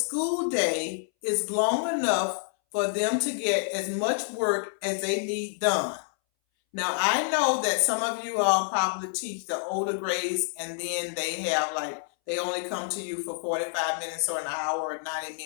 day is long enough for them to get as much work as they need done. Now, I know that some of you all probably teach the older grades, and then they only come to you for 45 minutes or an hour or 90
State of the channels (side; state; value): right; silent; 59 dB below the other